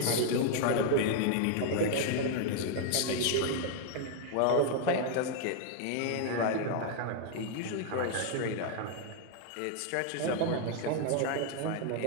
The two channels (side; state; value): both; different; correlation 0.00